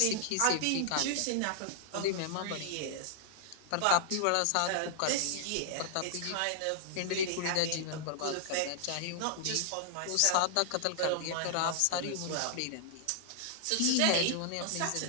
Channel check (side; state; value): both; different; correlation -0.01